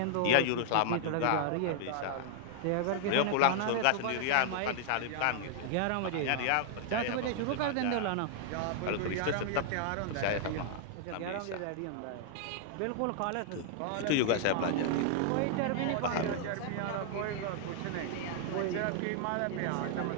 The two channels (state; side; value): different; both; correlation -0.01